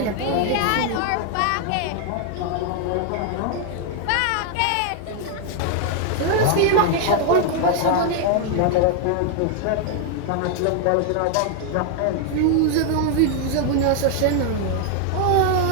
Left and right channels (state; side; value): different; both; correlation 0.00